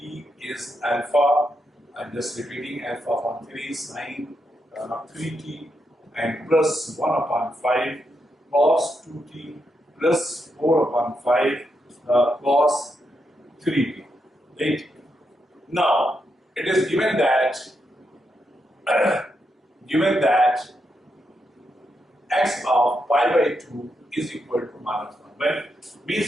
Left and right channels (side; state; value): both; normal; correlation 0.83